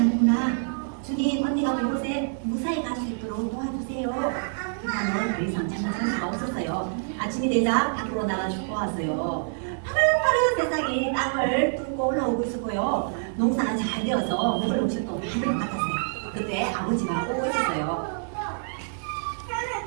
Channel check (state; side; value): silent; left; digital silence